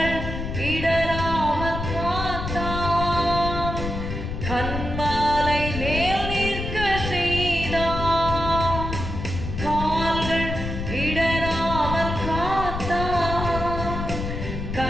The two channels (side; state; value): left; noise; rumble, 5 dB below the sound